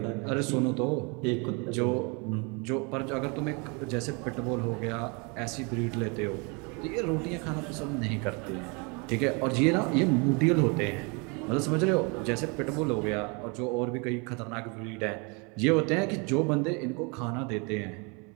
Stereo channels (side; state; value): left; quieter; 31.8 dB